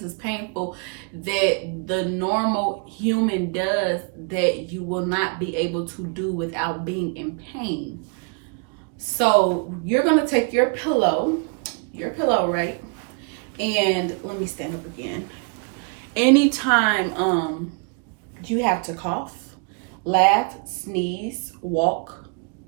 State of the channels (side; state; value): left; quieter; 37.4 dB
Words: is painful that the normal human does that you will not be able to do without being in pain. So you're gonna take your pillow, right? And let me stand up again. Anytime you have to cough, laugh, sneeze, walk,